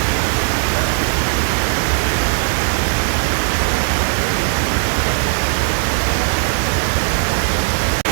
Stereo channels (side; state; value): left; silent; 57 dB below the other